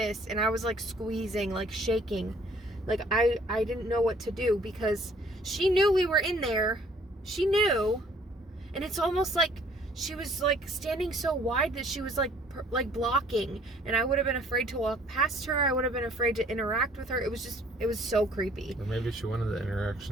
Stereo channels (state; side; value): normal; both; correlation 0.58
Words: and I was like squeezing, like shaking. Like I didn't know what to do because she knew we were in there. She knew, and it's almost like she was like standing so wide that she was like blocking, and I would have been afraid to walk past her. I would have been afraid to interact with her. It was so creepy. Or maybe she wanted the